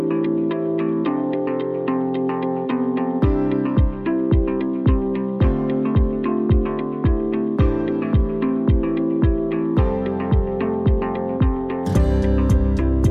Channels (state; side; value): identical; both; correlation 1.00